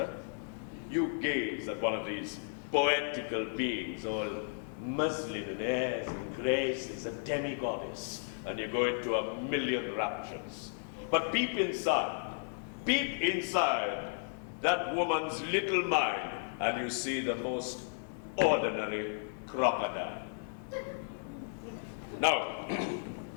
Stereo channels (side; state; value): right; silent; 55 dB below the other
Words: You gaze at one of these poetical beings, all muslin and airs and graces, a demi-goddess, and you go into a million raptures. But peep inside that woman's little mind, and you see the most ordinary crocodile. Now,